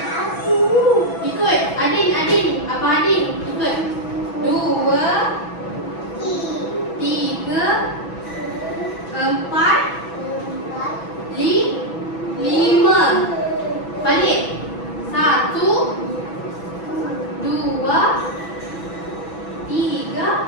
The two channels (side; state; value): right; late; 6.1 ms